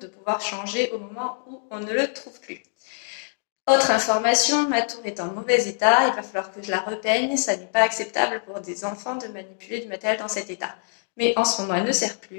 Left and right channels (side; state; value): right; silent; digital silence